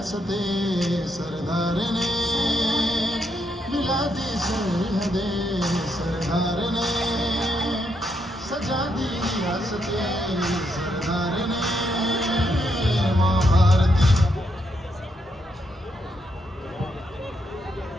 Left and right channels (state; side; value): normal; both; correlation 0.79